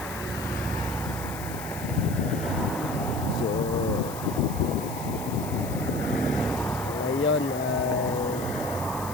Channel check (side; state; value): left; noise; hiss, 13 dB below the sound